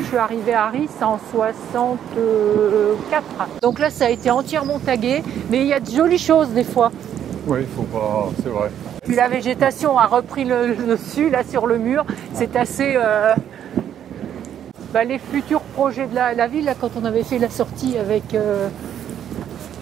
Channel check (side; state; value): left; quieter; 9.9 dB